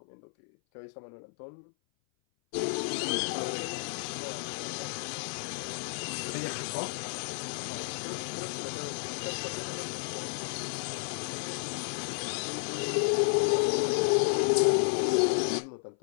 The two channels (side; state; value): right; silent; 57 dB below the other